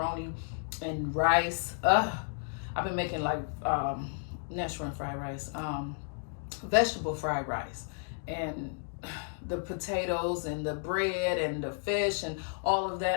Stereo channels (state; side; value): silent; right; 56 dB below the other